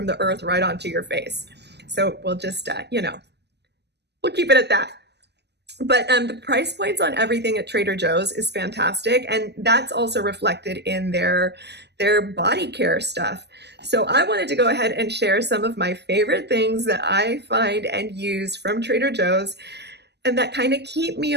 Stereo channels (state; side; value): late; left; 0.50 ms